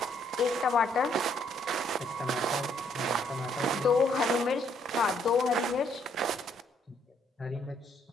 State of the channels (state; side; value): normal; both; correlation 0.69